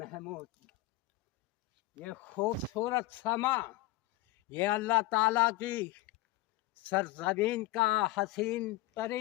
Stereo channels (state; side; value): quieter; right; 17.1 dB